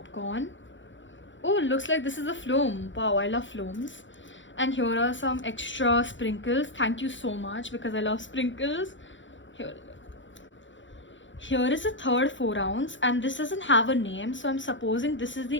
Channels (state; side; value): late; right; 0.55 ms